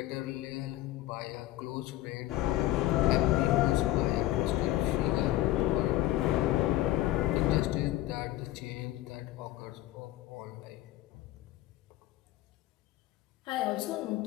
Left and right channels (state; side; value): quieter; right; 15.6 dB